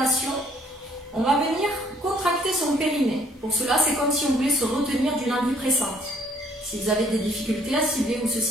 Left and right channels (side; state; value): both; normal; correlation 0.62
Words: on va venir contracter son périnée. Pour cela, c'est comme si on voulait se retenir d'une envie pressante. Si vous avez des difficultés à cibler où se